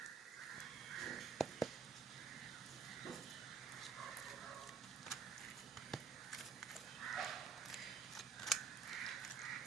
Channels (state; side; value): quieter; left; 6.2 dB